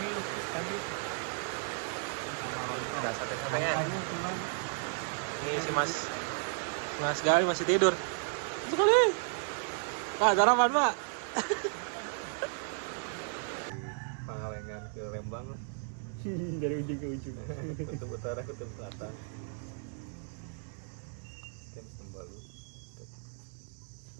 lupis tadi. Ada sate-satenya. Ini si Mas Gali masih tidur. Sekali. Pak, sarapan, Pak. Pangalengan ke Lembang lah. Dari ujung ke ujung. Kutub utara, kutub selatan. Kita Sembalu.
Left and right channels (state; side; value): silent; left; 55 dB below the other